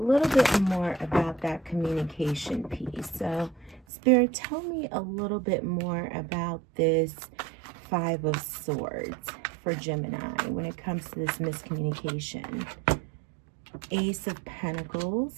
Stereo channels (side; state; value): left; drops out; at 3.9 s